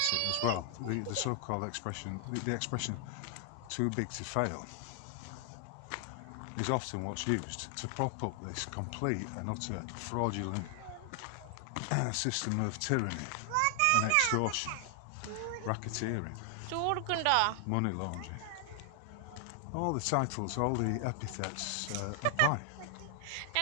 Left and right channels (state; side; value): different; both; correlation 0.00